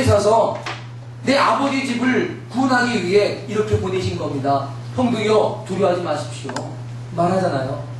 내 아버지 집을 구원하기 위해 이렇게 보내신 겁니다. 형들이요 두려워하지 마십시오. 말하잖아요.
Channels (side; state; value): both; identical; correlation 1.00